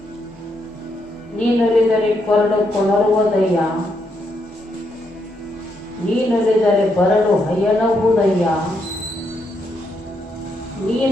ನೀನೊಲಿದರೆ ಕೊರಡು ಕೊಣರುವುದಯ್ಯ, ನೀನೊಲಿದರೆ ಬರಡು ಹಯನವುದಯ್ಯ,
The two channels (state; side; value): normal; both; correlation 0.78